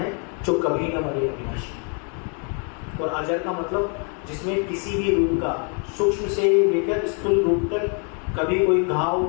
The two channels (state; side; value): quieter; right; 39.1 dB